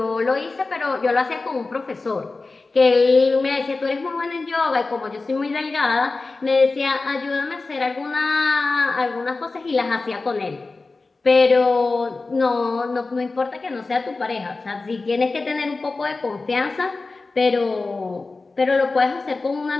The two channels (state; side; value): quieter; right; 3.7 dB